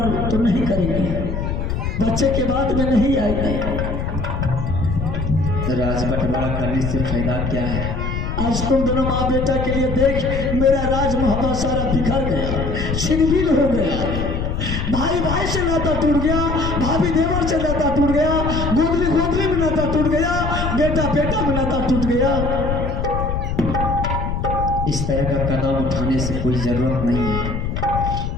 तो नहीं करेगी। बच्चे के बाद में नहीं आएगी। राज बंटवारा करने से फायदा क्या है? आज तुम दोनों माँ बेटा के लिए देख मेरा राज मोहब्बत सारा बिखर गया छिनबिन हो गया। भाई भाई से नाता टूट गया, भाभी देवर से नाता टूट गया, गोदली गोदली में नाता टूट गया, बेटा बेटा में नाता टूट गया। इस तरह का कदम उठाने से कोई जरूरत नहीं है।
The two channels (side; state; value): left; noise; rumble, 2 dB below the sound